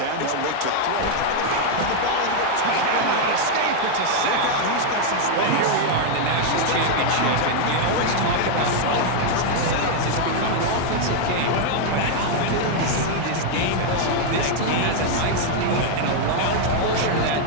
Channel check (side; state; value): both; different; correlation 0.00